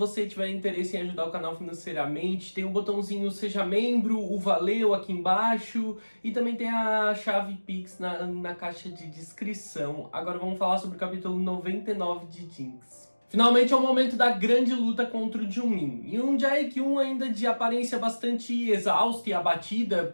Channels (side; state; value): both; inverted; correlation -1.00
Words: tiver interesse em ajudar o canal financeiramente, tem o botãozinho Seja Membro, o Valeu aqui embaixo e também tem a chave Pix na caixa de descrição. Agora vamos falar sobre o capítulo 99 de Jinx. Finalmente é o momento da grande luta contra o Jimin. E um Jae-kyun ainda de aparência bastante exausta e abatida,